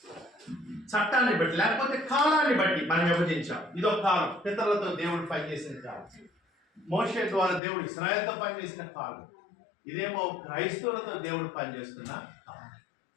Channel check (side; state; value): right; drops out; at 7.6 s